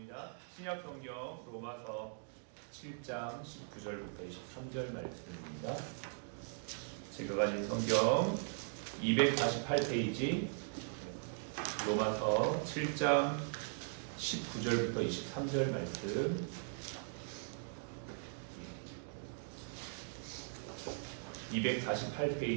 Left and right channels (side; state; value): left; silent; digital silence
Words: 신약 성경 로마서 7장 19절부터 23절 말씀입니다. 제가 가진 성경 248페이지 로마서 7장 19절부터 23절 말씀